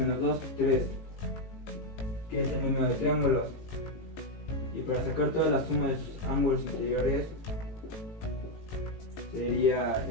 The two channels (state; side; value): late; right; 18 ms